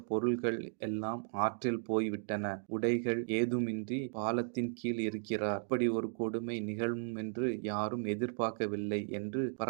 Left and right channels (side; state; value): left; silent; digital silence